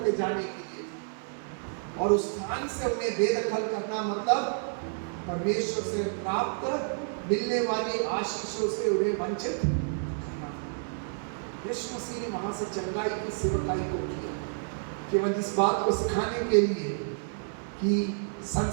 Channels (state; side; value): silent; left; digital silence